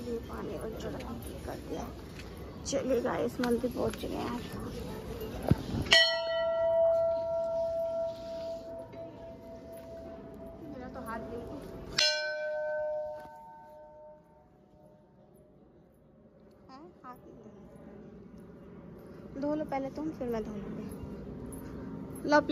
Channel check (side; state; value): both; identical; correlation 1.00